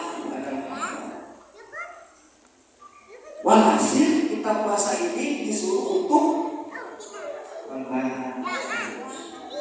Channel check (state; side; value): identical; both; correlation 1.00